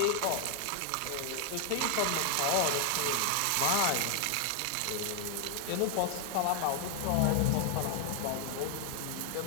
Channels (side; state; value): both; different; correlation 0.00